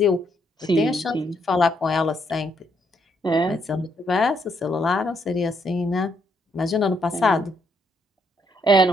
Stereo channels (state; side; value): normal; both; correlation 0.74